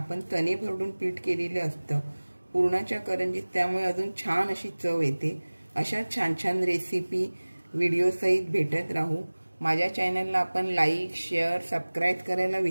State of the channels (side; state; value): both; inverted; correlation -1.00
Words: तणे भरडून पीठ केलेले असतं पुरणाच्या करंजीत, त्यामुळे अजून छान अशी चव येते। अशा छान छान रेसिपी व्हिडिओ सहित भेटत राहू। माझ्या चॅनलला आपण लाईक, शेअर, सबस्क्राईब करायला